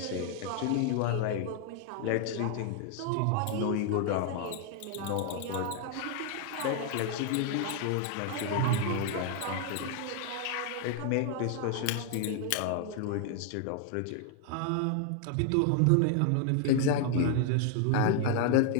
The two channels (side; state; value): both; different; correlation 0.00